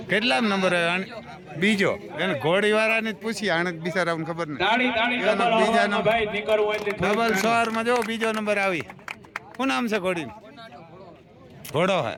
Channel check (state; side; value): identical; both; correlation 1.00